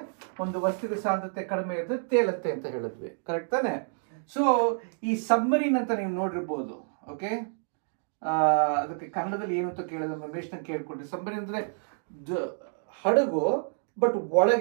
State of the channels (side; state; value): left; silent; 59 dB below the other